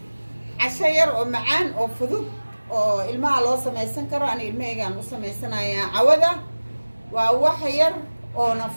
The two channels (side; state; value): both; inverted; correlation -1.00